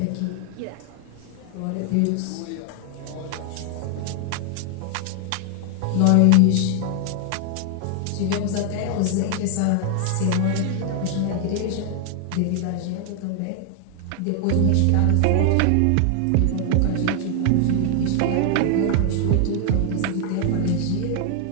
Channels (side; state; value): both; different; correlation 0.00